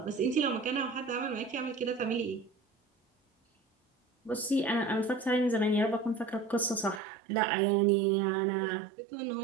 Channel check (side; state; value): left; drops out; at 7.0 s